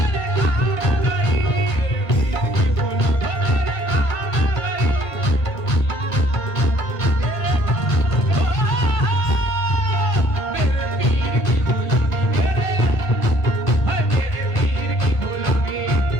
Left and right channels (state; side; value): late; right; 1.5 ms